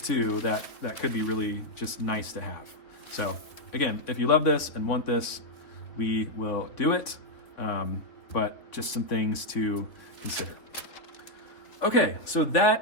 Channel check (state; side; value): late; right; 3.3 ms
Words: too, that could be really just nice to have. So again, if you love this and want this, we will do it. But just some things to consider. Okay, so